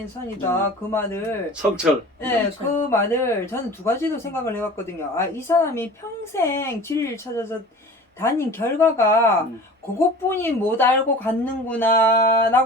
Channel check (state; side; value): normal; both; correlation 0.40